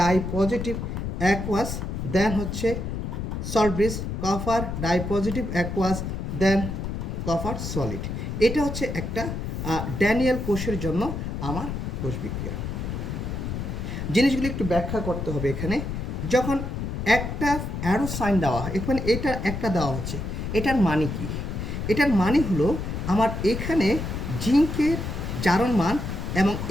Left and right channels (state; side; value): noise; left; rumble, 4 dB below the sound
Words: positive aqueous, then হচ্ছে salt bridge, copper di positive aqueous, then copper solid. এটা হচ্ছে একটা ড্যানিয়েল কোষের জন্য আমার কোষ বিক্রিয়া। জিনিসগুলি একটু ব্যাখ্যা করতে হবে। এখানে যখন একটা অ্যারো সাইন দেওয়া হয়, এখানে এটা একটা দেওয়া হচ্ছে, এটার মানে কি? এটার মানে হলো আমার এখানে জিঙ্কের জারণ মান এবং